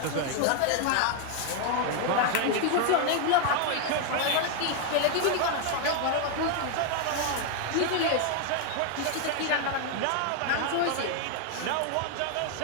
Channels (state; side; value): different; both; correlation 0.00